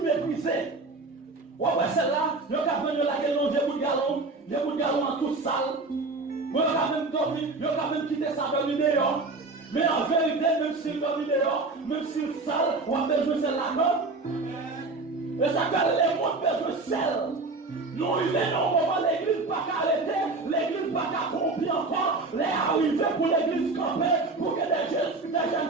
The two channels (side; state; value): left; quieter; 3.5 dB